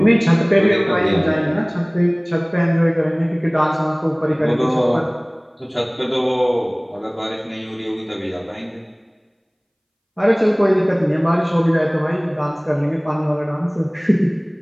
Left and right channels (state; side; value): identical; both; correlation 1.00